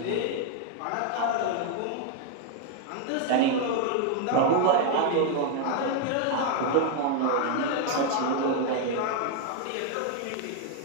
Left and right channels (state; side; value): different; both; correlation 0.00